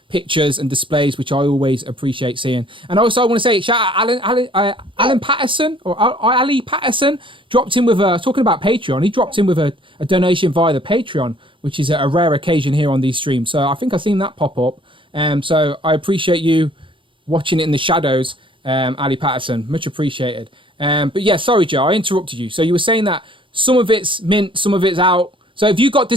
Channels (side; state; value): left; late; 0.25 ms